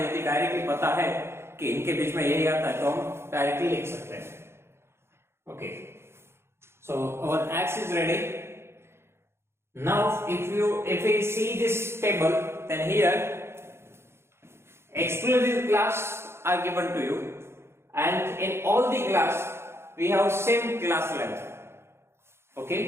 यदि directly पता है कि इनके बीच में यही आता है तो हम डायरेक्टली लिख सकते हैं. Okay, so our X is ready. Now if we see this table, then here exclusive class are given to you, and in all the class we have same class length.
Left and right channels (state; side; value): late; left; 0.12 ms